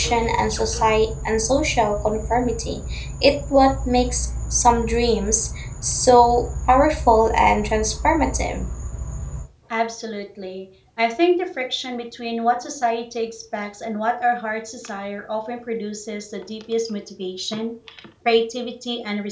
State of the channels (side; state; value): both; identical; correlation 1.00